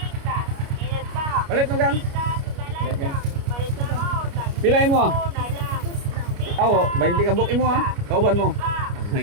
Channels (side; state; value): left; late; 29 ms